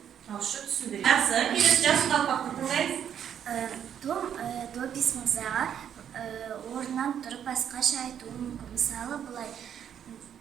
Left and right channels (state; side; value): quieter; left; 9.0 dB